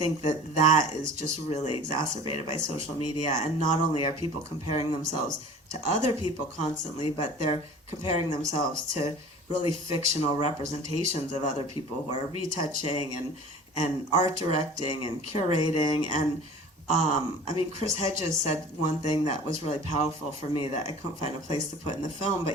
that is just really exacerbated by social media. And not only are people comparing themselves to other people constantly, but they're comparing themselves to really fictional representations of other people who are retouching and art directing and curating. And I mean, Chris Hedges said one thing that was really powerful for me that I couldn't find a place to put in the film,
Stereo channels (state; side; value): normal; both; correlation 0.42